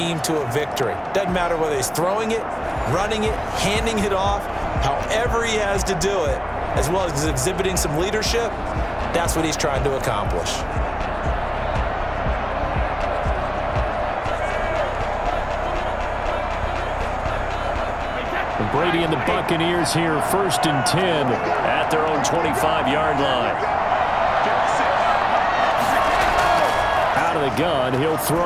to a victory. Doesn't matter whether he's throwing it, running it, handing it off, however he has to do it, as well as exhibiting some leadership, that's what he's trying to accomplish. Brady and the Buccaneers here, 1st and 10 at their own 25-yard line. Out of the gun, he'll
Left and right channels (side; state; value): both; identical; correlation 1.00